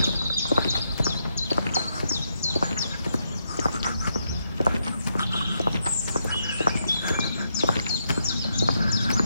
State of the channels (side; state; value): both; inverted; correlation -0.81